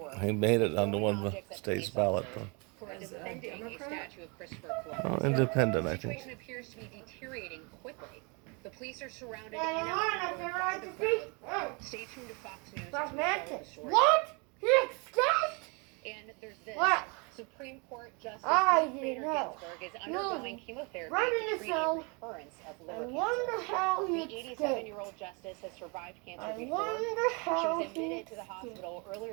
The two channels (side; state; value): left; quieter; 31.8 dB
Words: He made it onto one of the state's ballot, though. Who are defending a statue of Christopher Columbus. Oh, independent, I The think. situation appears to be deteriorating quickly. The police are surrounded in and out by the crowd. Stay tuned to Fox News. That's to follow the Mantis. story. What? He escaped? And there's this. What? Supreme Court Justice I Ruth didn't Bader know. Ginsburg is undergoing chemotherapy Right in to the treat a cell. recurrence of I liver wonder cancer. how he The escaped. 87-year-old justice has survived cancer I before. wonder She how was he admitted to the escaped. hospital